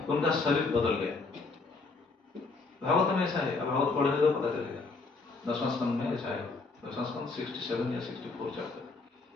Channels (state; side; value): quieter; right; 4.0 dB